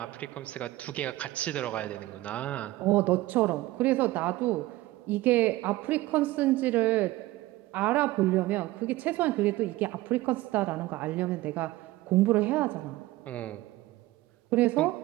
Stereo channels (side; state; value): left; quieter; 17.8 dB